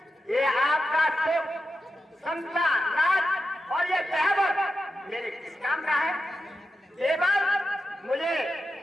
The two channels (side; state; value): both; normal; correlation 0.89